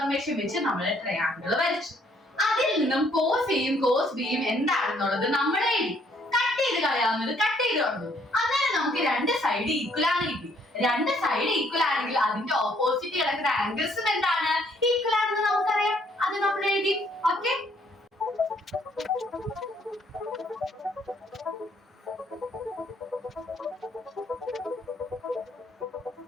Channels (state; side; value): normal; both; correlation 0.66